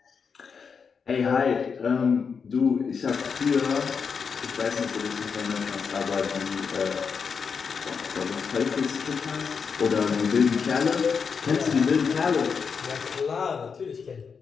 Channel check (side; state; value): right; quieter; 5.9 dB